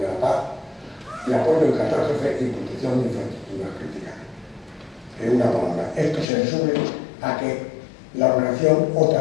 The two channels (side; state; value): right; drops out; at 6.2 s